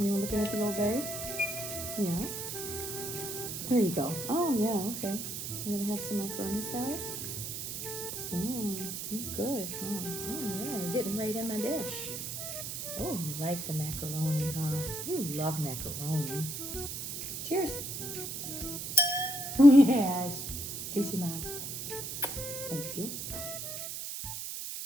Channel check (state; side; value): noise; right; hiss, 5 dB below the sound